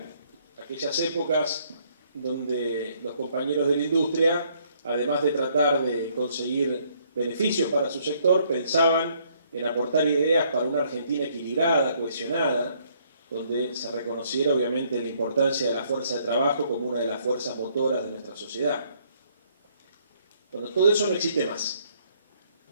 aquellas épocas donde los compañeros de la industria, además de tratar de conseguir beneficios para su sector, pensaban en aportar ideas para una Argentina equilibrada, cohesionada, donde se reconociera obviamente la importancia de la fuerza de trabajo como una de las fuerzas motoras de nuestra sociedad. Bueno, todo eso no existe más.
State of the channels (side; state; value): both; inverted; correlation -0.67